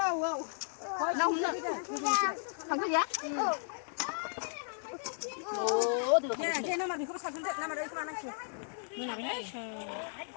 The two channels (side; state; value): right; silent; 55 dB below the other